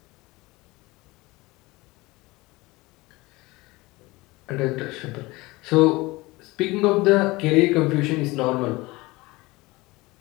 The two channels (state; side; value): quieter; right; 21.8 dB